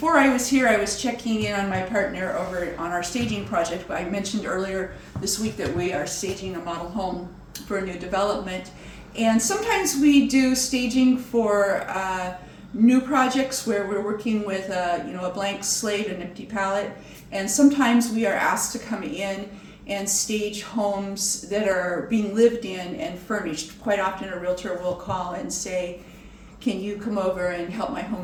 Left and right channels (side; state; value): both; identical; correlation 1.00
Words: I was here, I was checking in on my partner over on our staging project. I mentioned earlier this week that we are staging a model home for a new development, and sometimes we do staging for new projects where we're working with a blank slate, an empty palette. And sometimes we are asked to come in and stage homes that are being lived in and furnished. Quite often a realtor will call and say, can you come over and help my